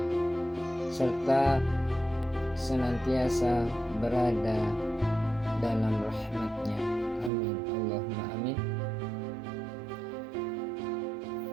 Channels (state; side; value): drops out; left; at 7.3 s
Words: serta senantiasa berada dalam rahmat-Nya. Amin, Allahumma amin.